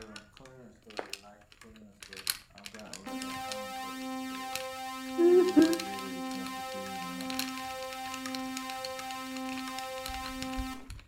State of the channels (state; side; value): identical; both; correlation 1.00